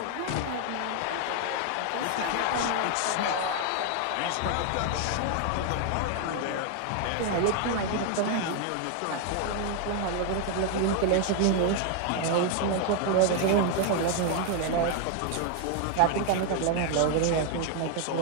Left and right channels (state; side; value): different; both; correlation 0.00